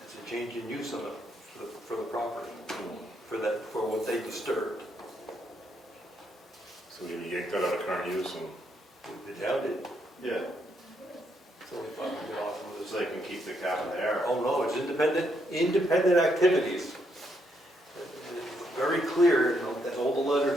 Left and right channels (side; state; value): both; normal; correlation 0.76